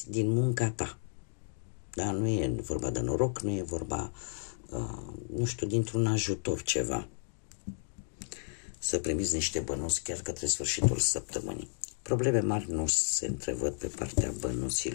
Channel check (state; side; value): silent; right; digital silence